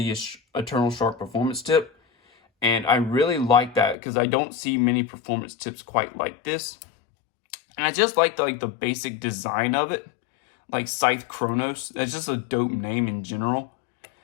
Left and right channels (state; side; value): drops out; right; at 4.0 s